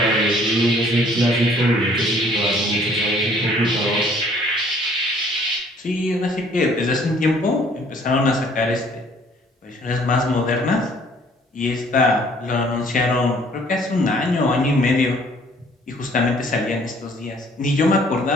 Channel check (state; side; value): normal; both; correlation 0.58